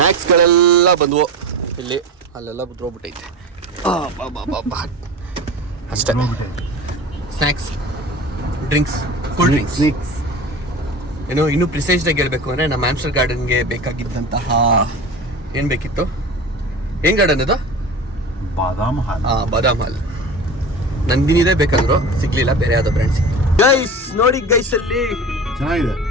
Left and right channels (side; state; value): both; normal; correlation 0.33